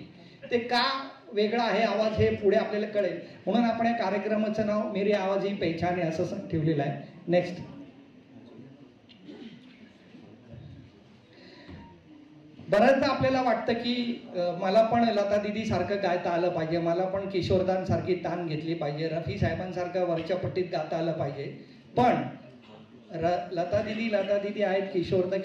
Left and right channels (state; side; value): identical; both; correlation 1.00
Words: ते का वेगळा आहे आवाज हे पुढे आपल्याला कळेल. म्हणून आपण या कार्यक्रमाचं नाव मेरी आवाज ही पहचान आहे असं ठेवलेलं आहे. नेक्स्ट. बऱ्याचदा आपल्याला वाटतं की मला पण लता दिदी सारखं गायता आलं पाहिजे, मला पण किशोरदांसारखी तान घेतली पाहिजे, रफी साहेबांसारखं वरच्या पट्टीत गाता आलं पाहिजे. पण लता दिदी आहेत,